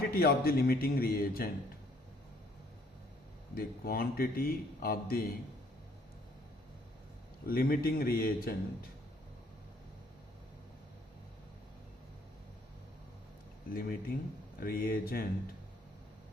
of the limiting reagent. The quantity of the limiting reagent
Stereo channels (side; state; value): both; normal; correlation 0.63